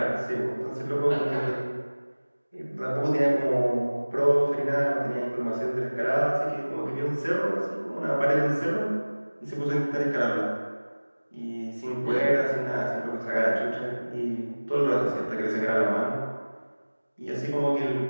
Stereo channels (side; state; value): both; inverted; correlation -1.00